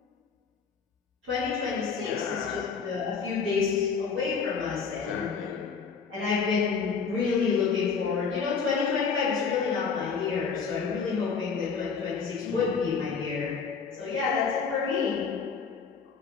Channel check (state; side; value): quieter; right; 5.6 dB